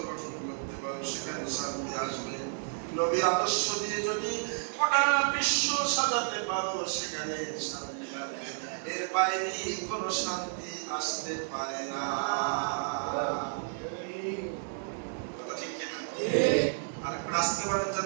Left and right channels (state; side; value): silent; left; digital silence